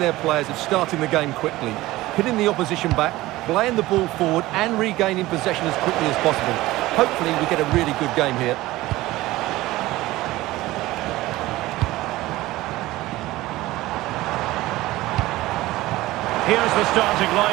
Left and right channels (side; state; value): left; quieter; 17.7 dB